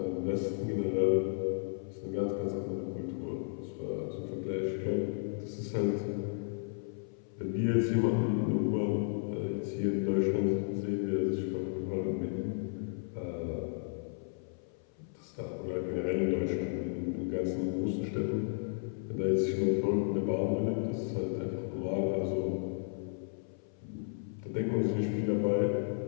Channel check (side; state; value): right; silent; 55 dB below the other